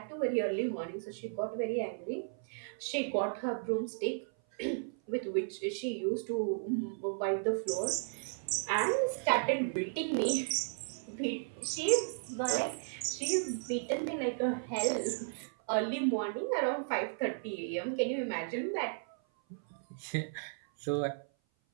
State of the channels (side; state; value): left; silent; 55 dB below the other